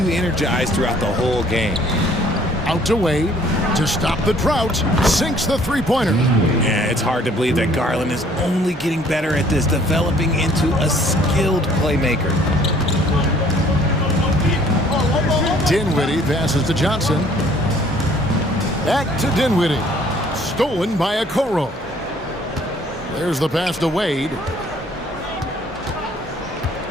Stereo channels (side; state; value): both; normal; correlation 0.58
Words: energized throughout the whole game. Out to Wade to stop the drought. Sinks the three-pointer. Yeah, it's hard to believe that Garland is only getting better at this, developing into a skilled playmaker. Dinwiddie passes to Johnson. Back to Dinwiddie. Stolen by Okoro. There's the pass to Wade.